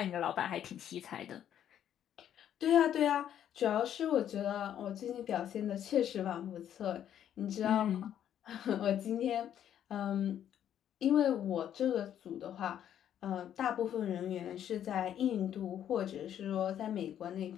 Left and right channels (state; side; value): quieter; right; 10.2 dB